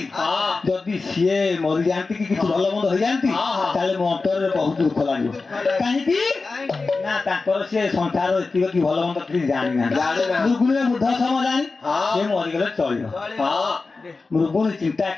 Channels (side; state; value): right; quieter; 4.0 dB